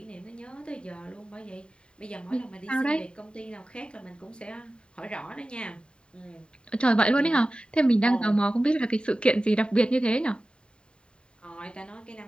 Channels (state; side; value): late; right; 0.051 ms